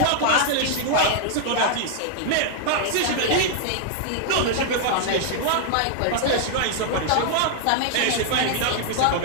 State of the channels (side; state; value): both; different; correlation -0.01